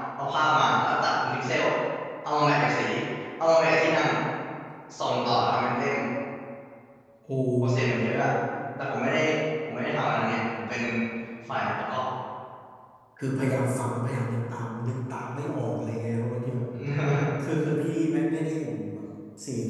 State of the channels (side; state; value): both; identical; correlation 1.00